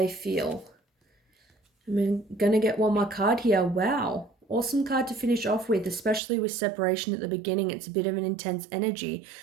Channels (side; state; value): left; drops out; at 6.2 s